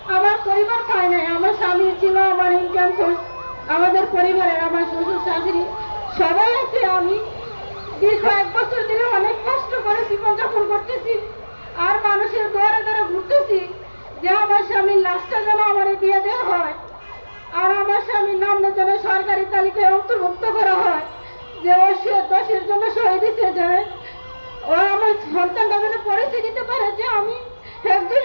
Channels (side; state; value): both; inverted; correlation -1.00